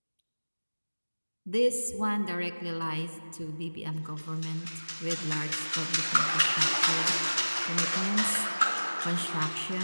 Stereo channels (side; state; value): both; inverted; correlation -1.00